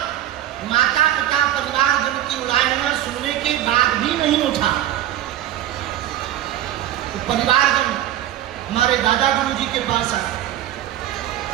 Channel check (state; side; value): quieter; left; 12.6 dB